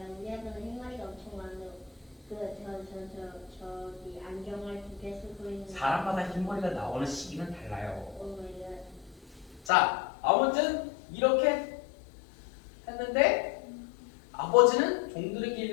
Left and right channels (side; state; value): right; drops out; at 9.7 s